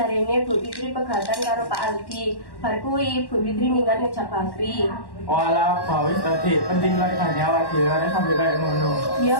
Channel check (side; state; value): right; late; 1.1 ms